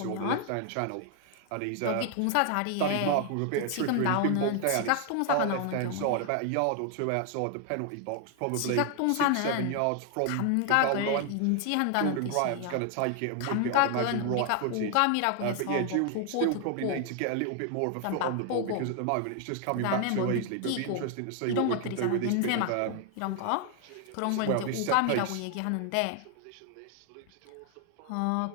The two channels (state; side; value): different; both; correlation 0.00